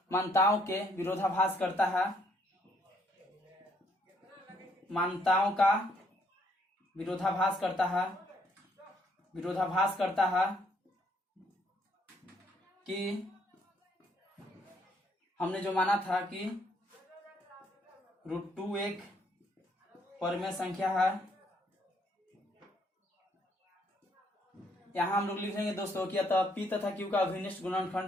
के विरोधाभास करता है, मान्यताओं का विरोधाभास करता है कि हमने जो माना था कि √2 एक परमेय संख्या है। यहाँ हम लोग लिखेंगे दोस्तों कि अतः p तथा q का अभिनिष्ठ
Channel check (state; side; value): normal; both; correlation 0.69